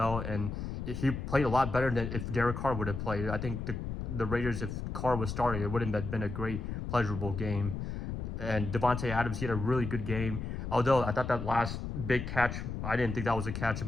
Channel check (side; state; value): left; noise; rumble, 5 dB below the sound